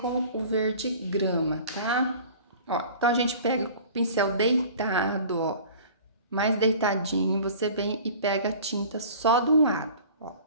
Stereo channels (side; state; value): both; inverted; correlation -0.44